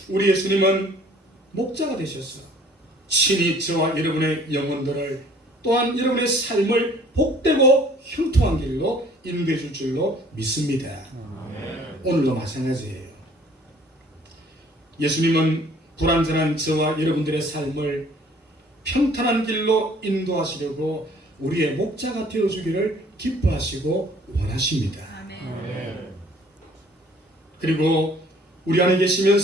우리 예수님은 목자가 되셨어. 친히 저와 여러분의 영혼들을 또한 여러분의 삶을 복되고 형통한 길로 인도해 줄 줄로 믿습니다. 오늘도 마찬가지예요. 예수님은 불완전한 저와 여러분들의 삶을 평탄한 길로 인도하시려고 우리의 목자가 되어주기를 기뻐하시고 원하십니다. 그리고 우리 안에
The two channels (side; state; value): both; normal; correlation 0.55